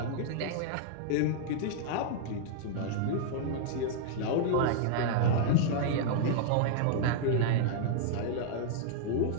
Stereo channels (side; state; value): both; different; correlation -0.01